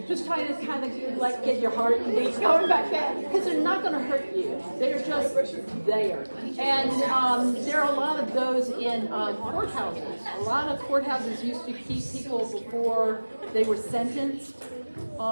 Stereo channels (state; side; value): inverted; both; correlation -1.00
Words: Just try to kind of like get your heart beat going back there, because they're not going to hurt you. They're just there. And there are a lot of those in courthouses. A lot of courthouses used to keep people before they were sentenced.